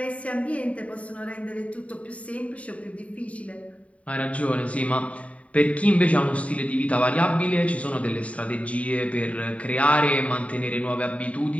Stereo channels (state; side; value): late; right; 0.066 ms